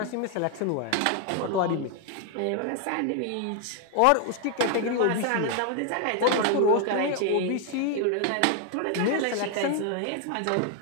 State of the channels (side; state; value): both; different; correlation 0.00